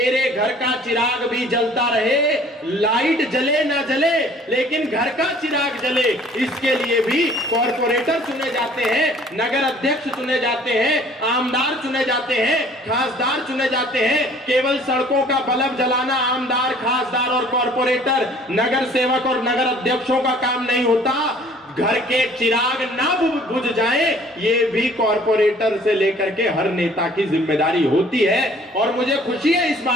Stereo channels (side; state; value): both; normal; correlation 0.54